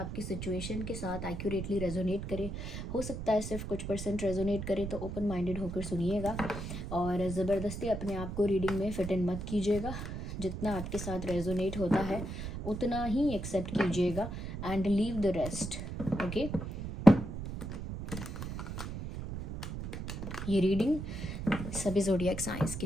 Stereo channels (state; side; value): noise; right; rumble, 6 dB below the sound